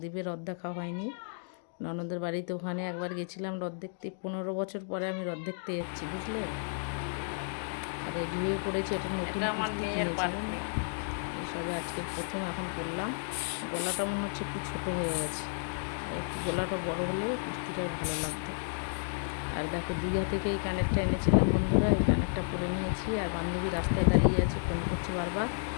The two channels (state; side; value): silent; right; digital silence